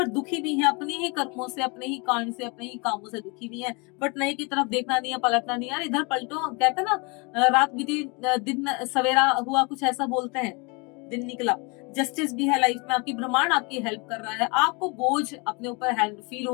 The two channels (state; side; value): quieter; right; 30.1 dB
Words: दुखी भी है, अपने ही कर्मों से, अपने ही कांड से, अपने ही कामों से दुखी भी है। बट नए की तरफ देखना नहीं है, पलटना नहीं है। यार इधर पलटो, कहते हैं ना, रात बीती दिन सवेरा हुआ, कुछ ऐसा बोलते हैं, दिन निकला। जस्टिस भी है लाइफ में, आपकी ब्रह्मांड आपकी हेल्प कर रहा है, आपको बोझ अपने ऊपर हैंड फील